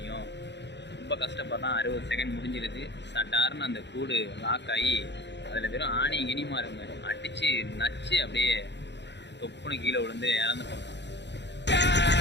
ரொம்ப கஷ்டப்படுறான். 60 செகண்ட் முடிஞ்சிருது. சட்டாருன்னு அந்த கூடு லாக் ஆகி அதில் வெறும் ஆணி இனிமா இருங்க அடித்து நச்சு அப்படியே தொப்புன்னு கீழே விழுந்து இறந்து போகிறான்.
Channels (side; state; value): right; late; 0.51 ms